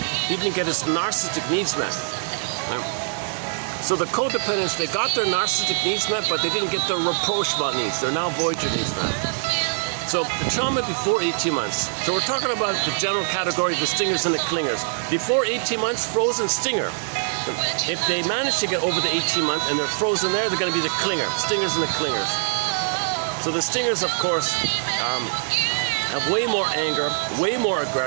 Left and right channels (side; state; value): left; silent; digital silence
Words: didn't get his narcissistic needs met. Right? So the codependents, they got their narcissistic needs met, but they didn't get their rapprochement needs. They're now voyager needs met. So the trauma before 18 months. So we're talking about the general category of the stingers and the clingers. Before 18 months, frozen stinger. If they manage to get over the 18 month and they're frozen there, they're going to be the clinger, stingers and the clingers. So the stingers, of course, have way more anger, way more